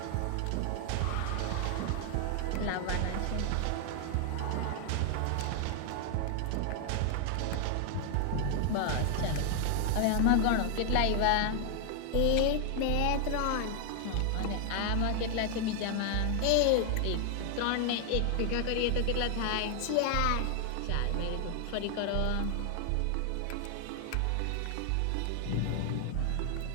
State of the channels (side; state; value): both; different; correlation 0.00